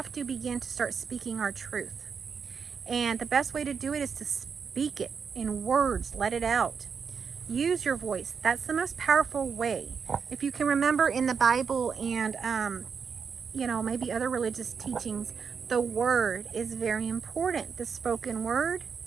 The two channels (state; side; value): quieter; left; 6.2 dB